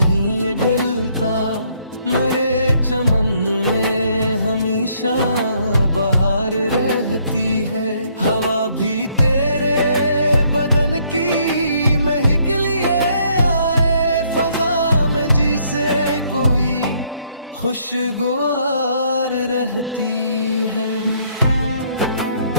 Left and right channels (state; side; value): inverted; both; correlation -0.68